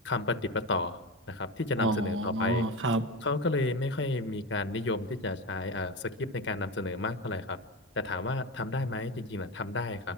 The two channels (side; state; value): both; normal; correlation 0.21